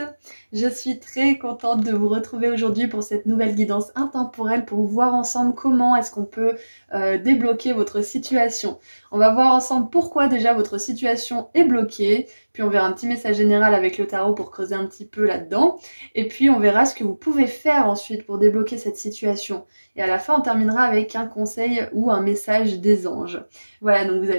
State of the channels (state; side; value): inverted; both; correlation -1.00